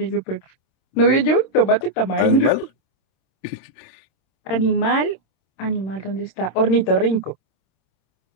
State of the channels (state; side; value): late; right; 26 ms